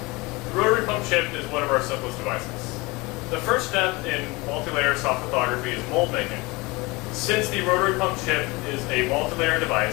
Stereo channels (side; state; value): right; quieter; 24.2 dB